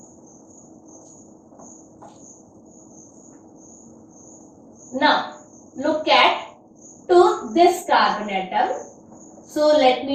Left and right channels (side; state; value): both; identical; correlation 1.00